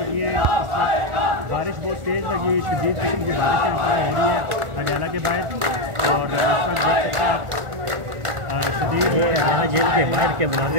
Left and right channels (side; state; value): left; late; 1.4 ms